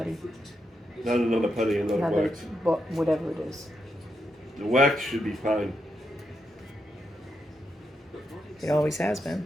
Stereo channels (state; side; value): normal; both; correlation 0.83